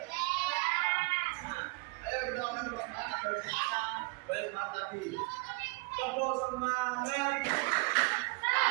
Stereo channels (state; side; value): quieter; left; 27.8 dB